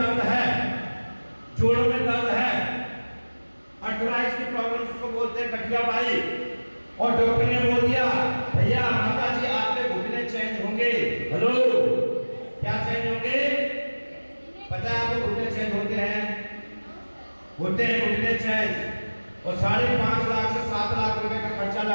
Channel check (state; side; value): inverted; both; correlation -1.00